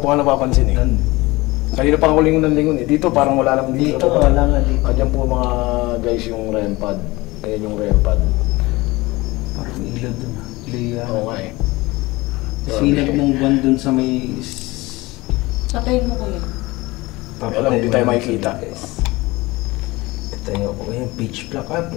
nga napapansin, eh. Kanina pa ako lingon ng lingon, eh. Dito parang wala lang dito. Dito, wala nga dito. Diyan po mga guys yung REM pad. Ayan yung REM pad. Parang may ilaw dun ah. Ilaw yan. Oo nga, eh. Sinag ng buwan dun sa may... Patayin mo kuya. Alam, hindi tayo makikita. Ito yung pitch black ah.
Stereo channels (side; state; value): right; quieter; 21.3 dB